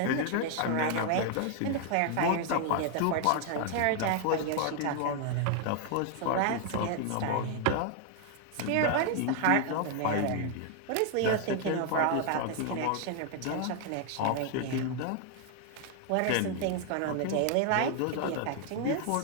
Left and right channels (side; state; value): both; different; correlation 0.00